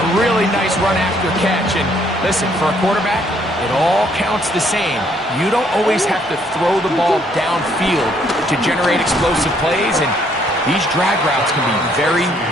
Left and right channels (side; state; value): both; normal; correlation 0.67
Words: really nice run after catch. And listen, for a quarterback, it all counts the same. You don't always have to throw the ball downfield to generate explosive plays, and these drag routes can be very,